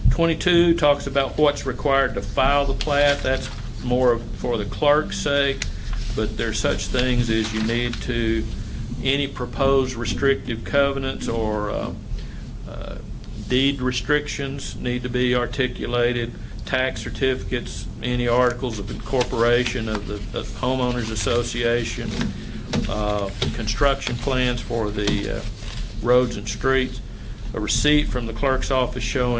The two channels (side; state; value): both; identical; correlation 1.00